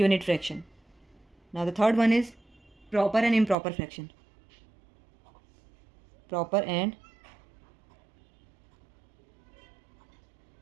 fraction. Now the third one is proper and improper fraction. Proper and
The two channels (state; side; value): drops out; left; at 3.6 s